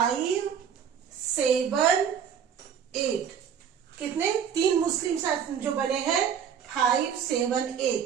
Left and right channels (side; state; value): left; quieter; 7.9 dB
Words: 7, 8। कितने? तीन मुस्लिम शासन जो बने हैं 5, 7,